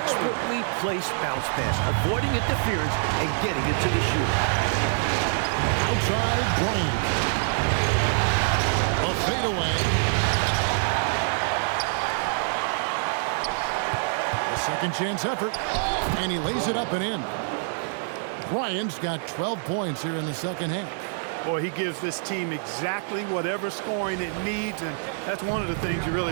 placed bounce pass, avoiding interference and getting it to the shooter. Outside Bryant. A fadeaway. A second chance effort. And he lays it up and in. Bryant's got 12 points here in the second half. Boy, he gives this team exactly whatever scoring it needs, and that's one of the things you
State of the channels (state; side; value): silent; left; digital silence